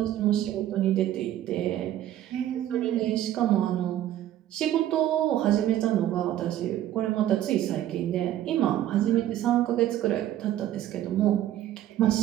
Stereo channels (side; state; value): left; quieter; 12.5 dB